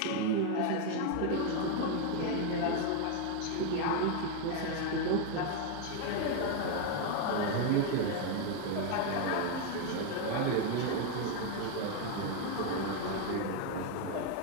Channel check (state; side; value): different; both; correlation 0.01